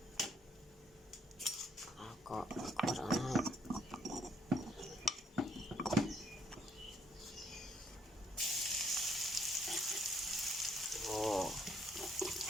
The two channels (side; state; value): both; normal; correlation 0.67